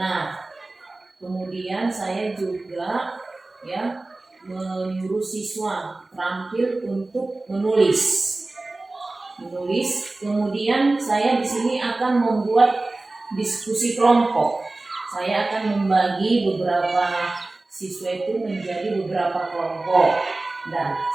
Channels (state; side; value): quieter; left; 3.1 dB